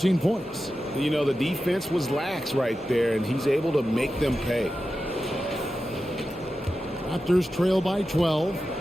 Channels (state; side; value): normal; both; correlation 0.92